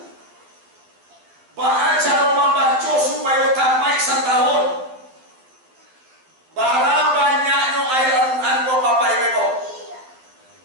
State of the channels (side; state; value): left; late; 12 ms